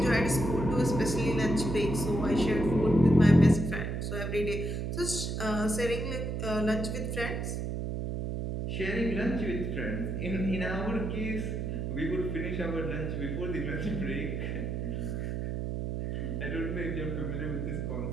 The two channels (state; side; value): noise; right; hum, 2 dB below the sound